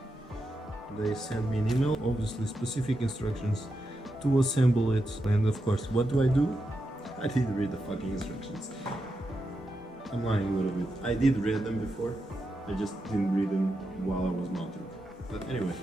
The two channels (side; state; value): both; normal; correlation 0.86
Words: They sent me an email, obviously specific instructions to assemble it, and of course, what do? I didn't read the fucking instructions. I'm lying a little bit. I did read them before, I just didn't read them while I was mounting. But anyway,